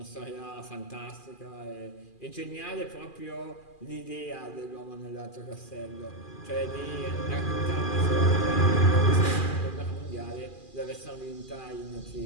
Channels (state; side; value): late; right; 2.4 ms